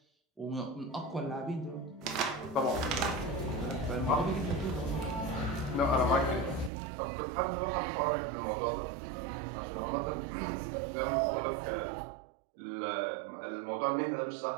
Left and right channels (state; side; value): drops out; left; at 6.7 s